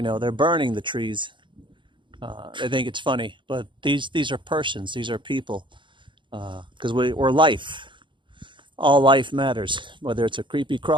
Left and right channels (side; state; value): left; late; 0.23 ms